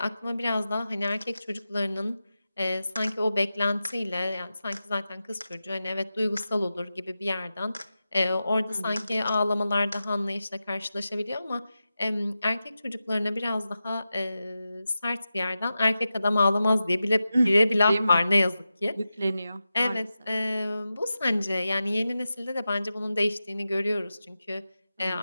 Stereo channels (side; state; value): both; inverted; correlation -0.92